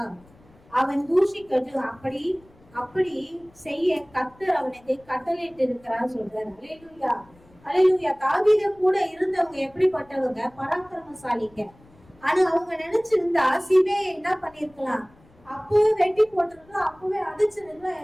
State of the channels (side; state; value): left; noise; rumble, 28 dB below the sound